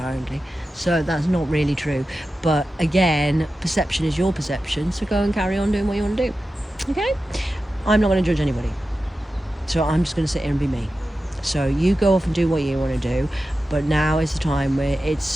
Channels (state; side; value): normal; both; correlation 0.93